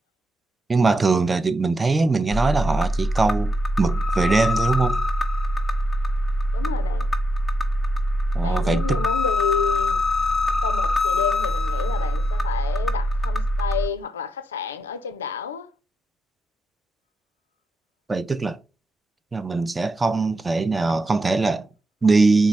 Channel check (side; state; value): both; normal; correlation 0.83